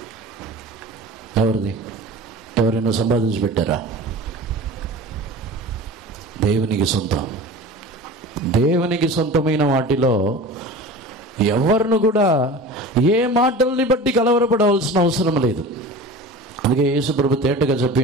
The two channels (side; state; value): both; normal; correlation 0.36